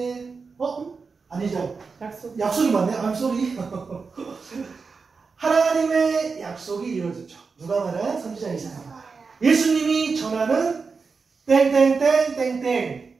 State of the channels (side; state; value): left; quieter; 4.8 dB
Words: 아니죠. 약속. 약속이 맞네. I'm sorry. 하나님의 약속이 이루어졌죠. 누가 말한? 선지자 이사야. 예수님이 전하는 땡땡땡땡땡